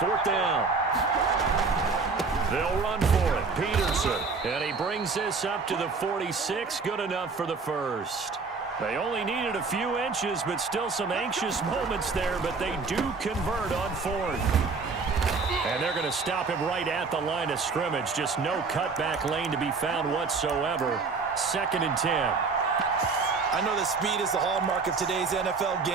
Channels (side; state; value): left; quieter; 4.5 dB